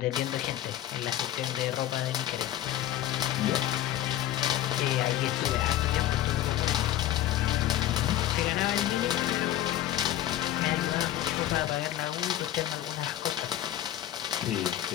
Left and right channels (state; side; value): quieter; right; 12.9 dB